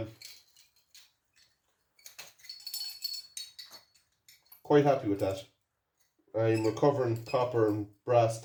Quite happy with that. I'm recovering copper and brass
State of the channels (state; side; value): identical; both; correlation 1.00